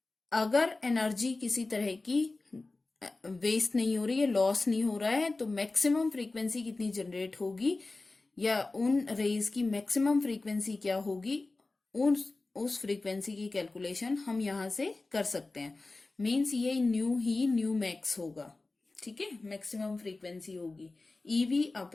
अगर एनर्जी किसी तरह की वेस्ट नहीं हो रही है, लॉस नहीं हो रहा है, तो मैक्सिमम फ्रीक्वेंसी कितनी जनरेट होगी या उन रेज की मैक्सिमम फ्रीक्वेंसी क्या होगी, उस फ्रीक्वेंसी की कैलकुलेशन हम यहां से कर सकते हैं। मीन्स ये न्यू ही न्यू मैक्स होगा। ठीक है, मैक्सिमम फ्रीक्वेंसी होगी ईवी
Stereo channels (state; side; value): quieter; right; 3.3 dB